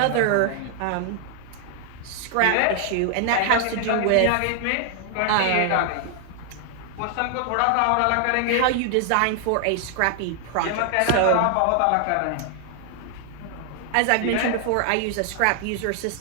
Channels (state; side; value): different; both; correlation 0.00